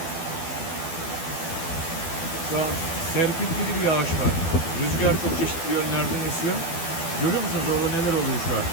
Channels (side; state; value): right; late; 12 ms